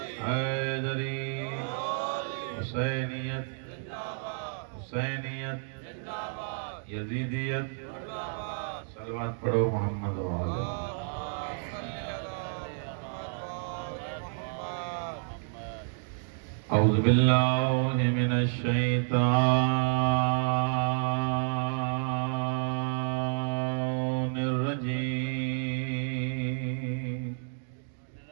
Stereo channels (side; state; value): left; silent; 58 dB below the other